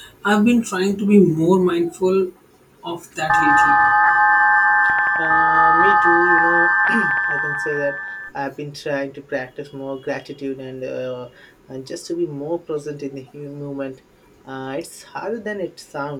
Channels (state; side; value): identical; both; correlation 1.00